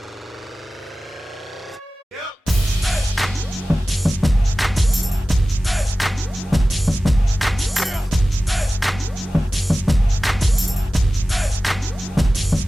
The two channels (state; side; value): normal; both; correlation 0.96